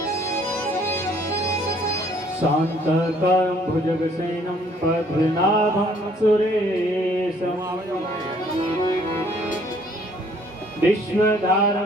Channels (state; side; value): normal; both; correlation 0.61